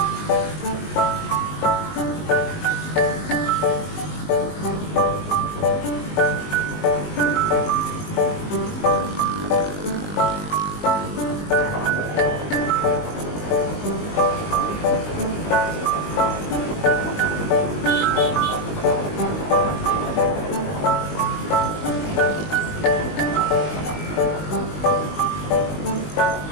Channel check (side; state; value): right; late; 19 ms